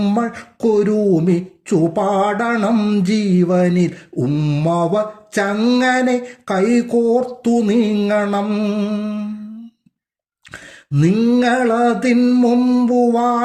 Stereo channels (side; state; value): both; identical; correlation 1.00